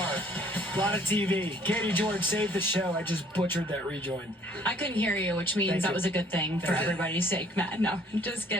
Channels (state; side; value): normal; both; correlation 0.60